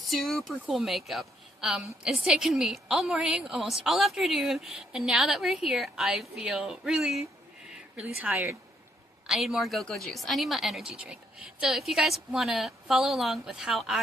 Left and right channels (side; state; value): both; normal; correlation 0.71